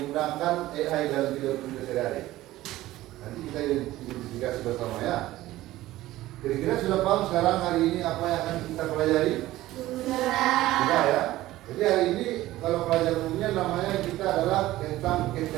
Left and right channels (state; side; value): quieter; left; 16.1 dB